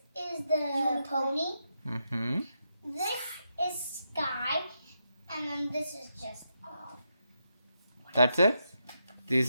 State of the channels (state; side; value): inverted; both; correlation -0.83